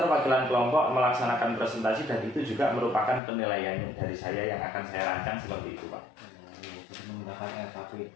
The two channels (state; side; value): drops out; right; at 3.2 s